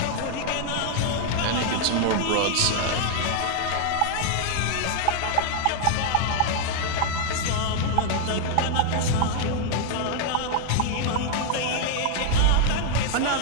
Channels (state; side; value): different; both; correlation 0.00